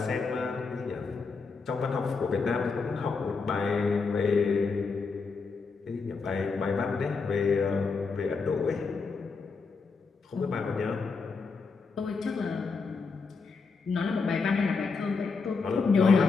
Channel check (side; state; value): right; quieter; 4.7 dB